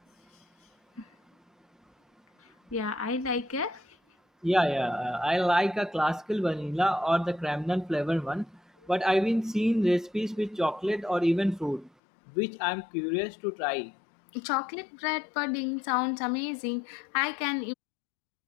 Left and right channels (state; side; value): drops out; right; at 11.9 s